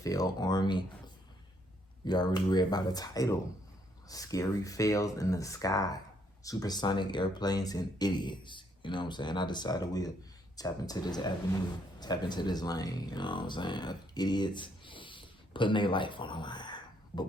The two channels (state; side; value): normal; both; correlation 0.70